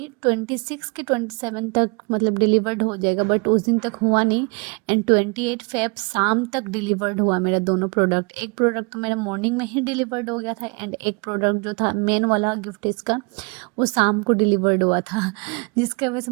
के 27 तक मतलब डिलीवर्ड हो जाएगा, बट उस दिन तक हुआ नहीं। एंड 28 फेब शाम तक डिलीवर्ड हुआ मेरा दोनों प्रोडक्ट। एक प्रोडक्ट तो मेरा मॉर्निंग में ही डिलीवर्ड हो गया था एंड एक प्रोडक्ट जो था मेन वाला गिफ्ट इसका, वो शाम को डिलीवर्ड हुआ था जिसकी वजह से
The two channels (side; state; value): left; quieter; 31.3 dB